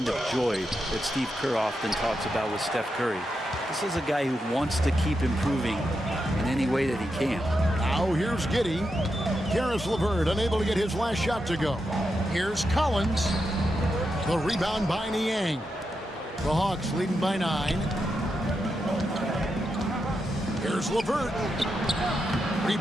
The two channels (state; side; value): normal; both; correlation 0.86